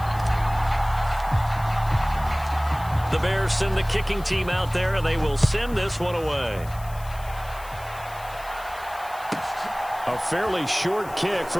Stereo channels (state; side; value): noise; left; hiss, 20 dB below the sound